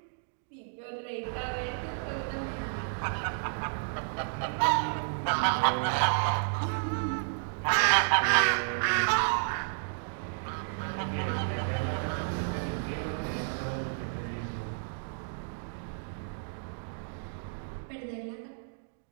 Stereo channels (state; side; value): silent; left; digital silence